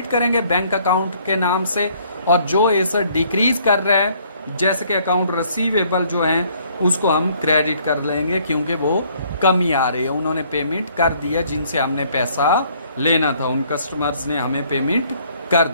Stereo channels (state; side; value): inverted; both; correlation -0.62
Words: करेंगे बैंक अकाउंट के नाम से, और जो एसेट डिक्रीज कर रहा है जैसे कि अकाउंट रिसीवेबल जो है उसको हम क्रेडिट कर लेंगे, क्योंकि वो कमी आ रही है, उन्होंने पेमेंट कर दिया जिनसे हमने पैसा लेना था, उन कस्टमर्स ने हमें पेमेंट कर